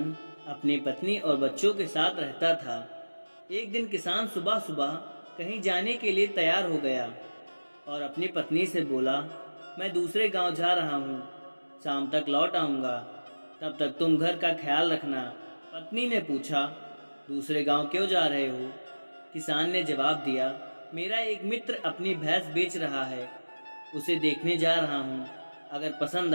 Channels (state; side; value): inverted; both; correlation -1.00